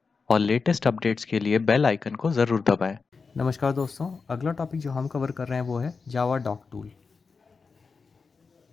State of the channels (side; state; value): right; quieter; 4.8 dB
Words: और लेटेस्ट अपडेट्स के लिए बेल आइकन को ज़रूर दबाएं। नमस्कार दोस्तों, अगला टॉपिक जो हम कवर कर रहे हैं वो है जावा डॉक टूल।